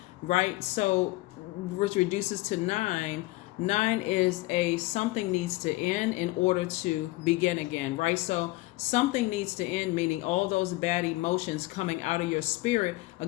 right? So, which reduces to 9. 9 is a something needs to end in order to begin again, right? So something needs to end, meaning all those bad emotions coming out of your spirit.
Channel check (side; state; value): right; quieter; 20.5 dB